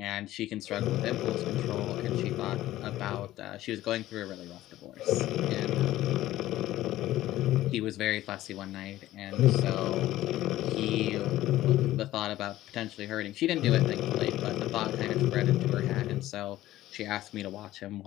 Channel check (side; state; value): right; quieter; 15.0 dB